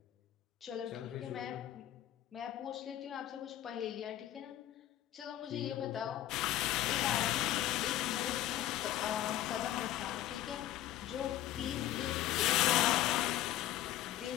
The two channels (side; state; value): right; quieter; 13.2 dB